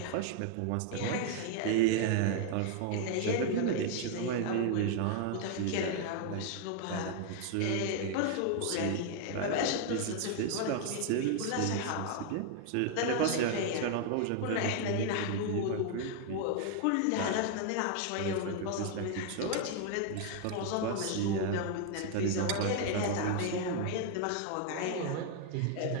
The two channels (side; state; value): both; different; correlation 0.00